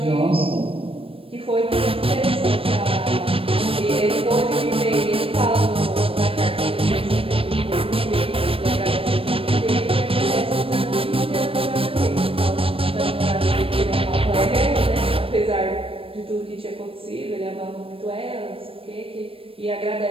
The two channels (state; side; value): late; left; 0.27 ms